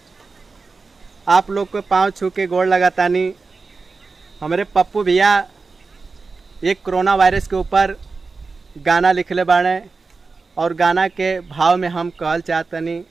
आप लोग को पाँव छू के गोड़ लगातानी। हमारे पप्पू भैया एक कोरोना वायरस के ऊपर गाना लिखले बाड़े और गाना के भाव में हम कहल चाहतनी।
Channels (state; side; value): quieter; left; 4.2 dB